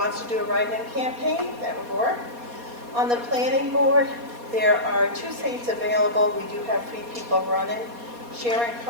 to do a write-in campaign, that would work. On the planning board, there are 2 seats available. We do have 3 people running: Sharon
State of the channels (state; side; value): late; left; 4.2 ms